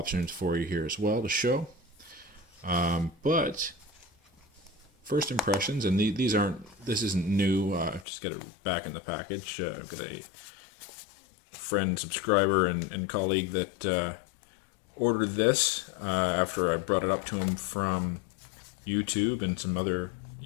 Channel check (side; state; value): right; drops out; at 8.1 s